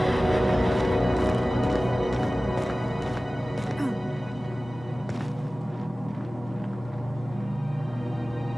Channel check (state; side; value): normal; both; correlation 0.97